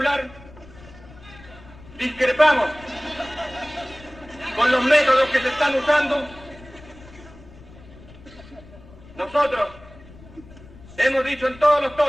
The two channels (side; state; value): left; noise; rumble, 20 dB below the sound